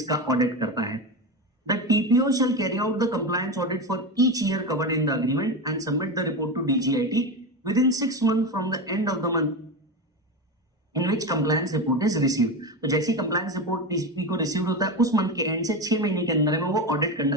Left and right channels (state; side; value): normal; both; correlation 0.19